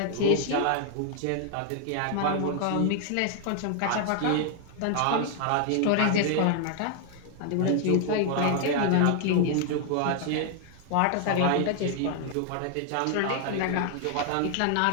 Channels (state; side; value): different; both; correlation 0.00